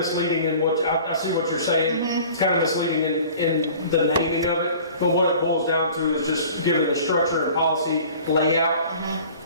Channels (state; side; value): inverted; both; correlation -0.45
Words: in what, I see what you're saying. It's kind of misleading in the naming of it, but what it boils down to is just giving the structure and policy layout